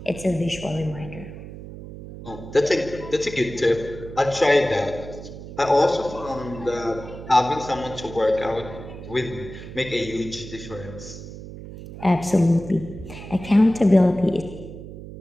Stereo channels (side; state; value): right; noise; hum, 13 dB below the sound